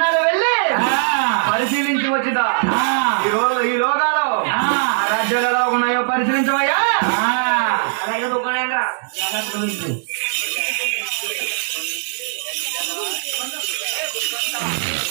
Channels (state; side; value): silent; left; 65 dB below the other